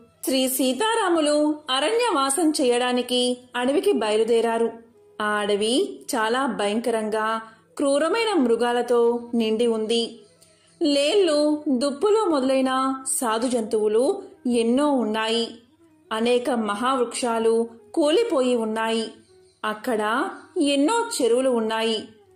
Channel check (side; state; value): both; identical; correlation 1.00